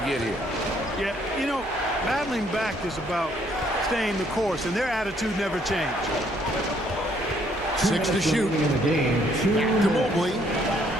here. Yeah, you know, battling back is about staying the course, and their attitude never changed. 6 to shoot. In the game. To Mobley.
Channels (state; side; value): noise; right; hum, 21 dB below the sound